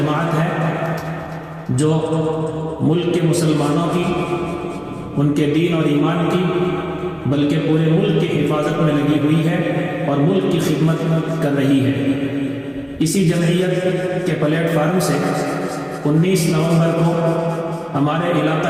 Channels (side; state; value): both; identical; correlation 1.00